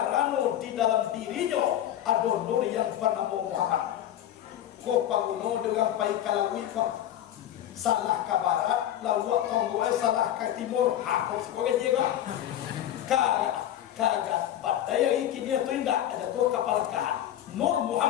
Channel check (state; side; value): quieter; right; 11.6 dB